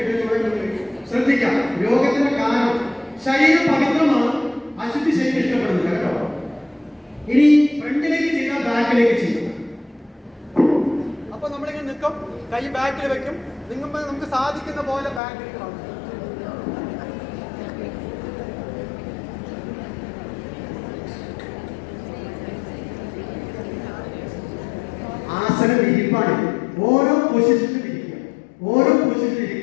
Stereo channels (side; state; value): right; drops out; at 15.2 s